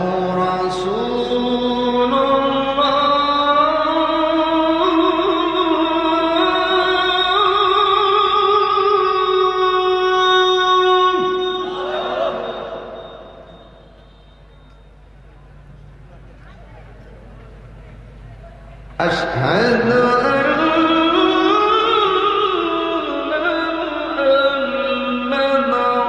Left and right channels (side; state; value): both; identical; correlation 1.00